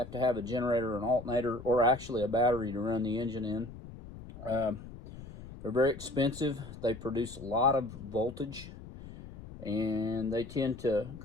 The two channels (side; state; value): left; noise; rumble, 14 dB below the sound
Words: to have a generator, an alternator, or actually a battery to run the engine in. They're very expensive. They produce a lot of voltage, and they tend to